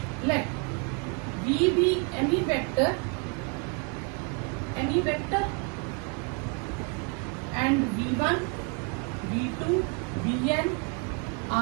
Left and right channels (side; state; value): left; quieter; 33.8 dB